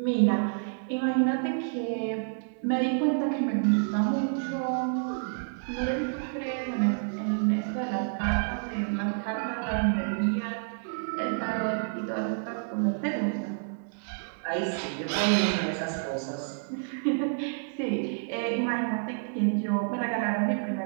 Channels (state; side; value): silent; left; digital silence